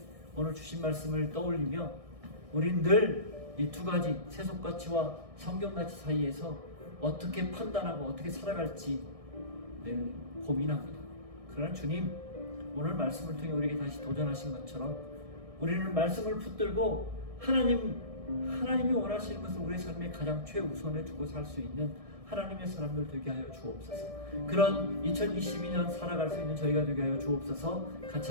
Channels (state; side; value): late; left; 1.6 ms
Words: 오늘 주신 말씀을 떠올리며 우린 늘 이 두 가지 세속가치와 성경가치 사이에서 어떻게 판단하고 어떻게 살아갈지 늘 고민합니다. 그러나 주님, 오늘 말씀을 통해 우리에게 다시 도전하신 것처럼 우리는 말씀을 붙들고 하나님이 원하시는 것을 우리의 삶에 가장 최우선에 두고 살 수 있는 하나님의 사람들 되게 하여 주옵소서. 그런 2022년 살아갈 수 있는 저희가 되게 하여 주옵소서. 같이